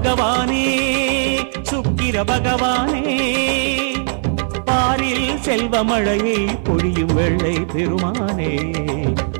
சுக்கிர பகவானே பாரில் செல்வமழையை பொழியும் வெள்ளை பெருமானே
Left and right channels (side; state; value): left; silent; 59 dB below the other